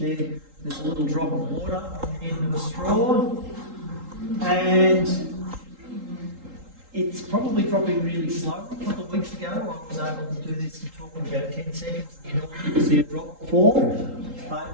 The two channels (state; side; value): late; left; 3.8 ms